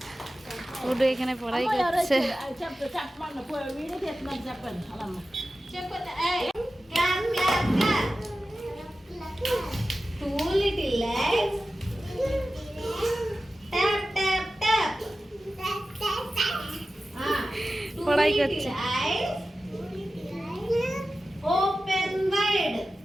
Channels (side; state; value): both; normal; correlation 0.94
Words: ওটা এখানে পড়াই করছে। পড়াই করছে। Open wide.